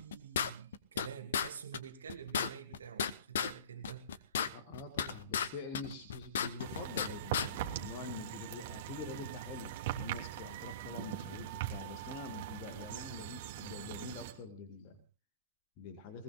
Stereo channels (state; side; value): inverted; both; correlation -0.41